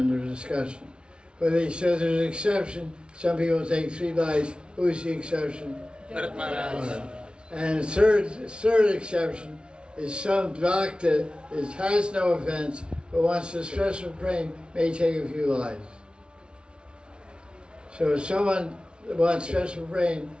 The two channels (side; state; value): left; late; 0.056 ms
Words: discussion. But he says there's an exception. Some people take 3 lives. Who's the exception? Bharat Maharaj. And the third exception is some bhakta has no offense, but wants a special praying may take a few lives. So if someone wants special praying,